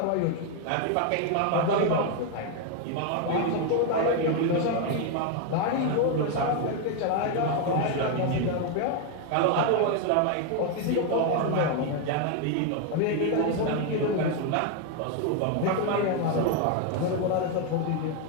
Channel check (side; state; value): both; different; correlation 0.01